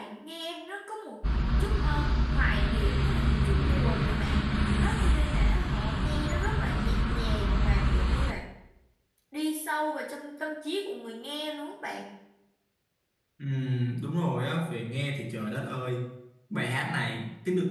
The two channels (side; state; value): both; identical; correlation 1.00